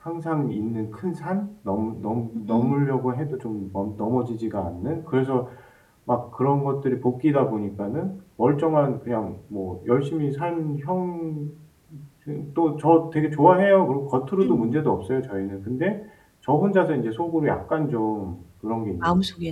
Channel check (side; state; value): both; identical; correlation 1.00